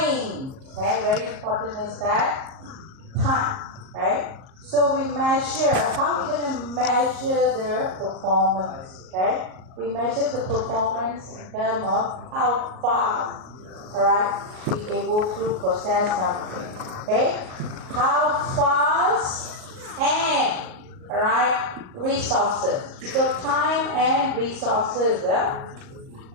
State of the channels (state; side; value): late; left; 38 ms